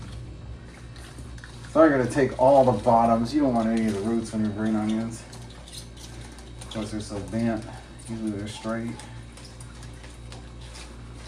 So I'm going to take all the bottoms. You don't want any of the roots on your green onions because they're so bent. Usually they're straight.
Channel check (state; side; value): identical; both; correlation 1.00